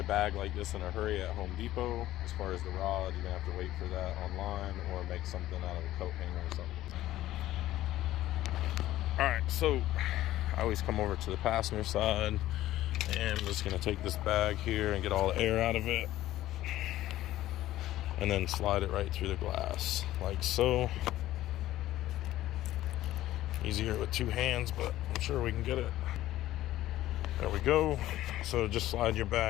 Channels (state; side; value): quieter; right; 14.6 dB